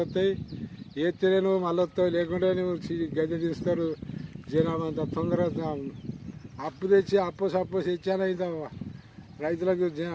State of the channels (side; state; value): both; identical; correlation 1.00